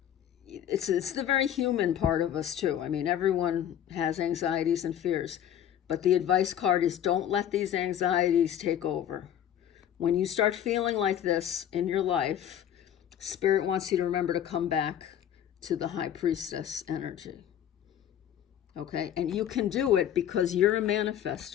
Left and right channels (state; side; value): quieter; right; 10.3 dB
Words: it's the very human part of us too. I mean, everyone has anxieties and fears, but the advice card is don't let these anxieties take over. When you start feeling like this in your life, Spirit wants you to remember to come back to the High Priestess energy. Okay, and you can do it because you're a